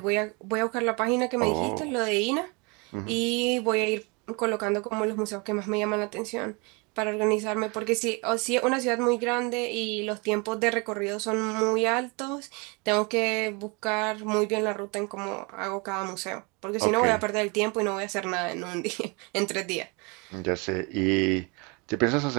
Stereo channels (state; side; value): quieter; left; 30.1 dB